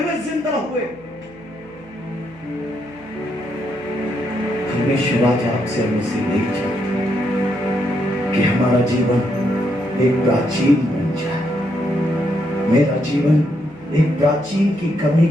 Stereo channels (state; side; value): noise; right; hum, 24 dB below the sound